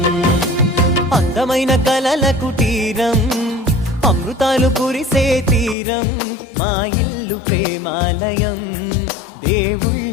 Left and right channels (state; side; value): drops out; right; at 5.8 s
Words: అందమైన కలల కుటీరం, అమృతాలు కురిసే తీరం, మా ఇల్లు ప్రేమాలయం,